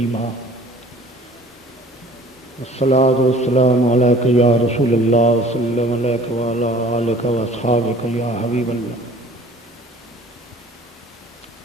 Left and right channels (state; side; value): normal; both; correlation 0.50